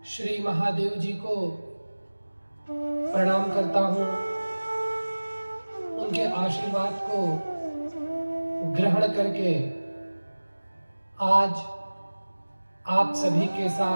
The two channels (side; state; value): both; inverted; correlation -1.00